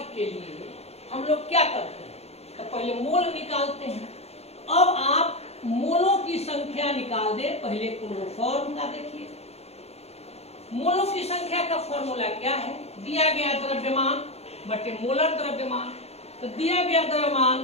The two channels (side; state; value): right; late; 0.30 ms